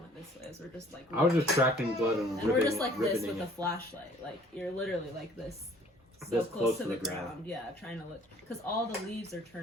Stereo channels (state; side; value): normal; both; correlation 0.55